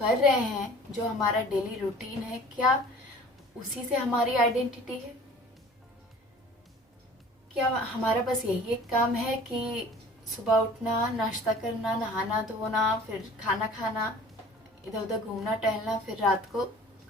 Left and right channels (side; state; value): both; normal; correlation 0.46